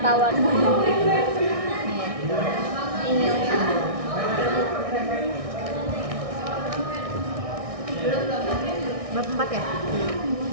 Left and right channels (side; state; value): left; late; 1.6 ms